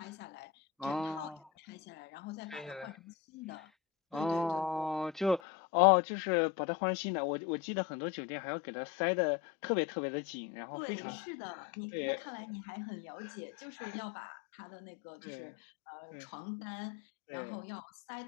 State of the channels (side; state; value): right; drops out; at 5.4 s